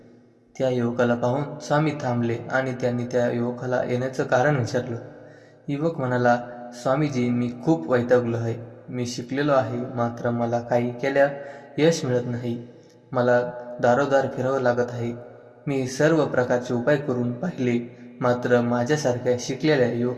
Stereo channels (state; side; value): identical; both; correlation 1.00